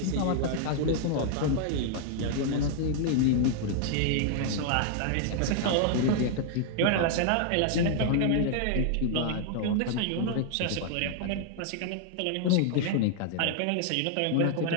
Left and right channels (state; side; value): different; both; correlation 0.00